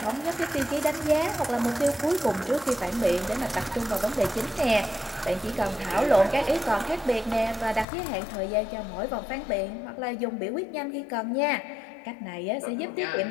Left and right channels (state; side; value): drops out; right; at 7.9 s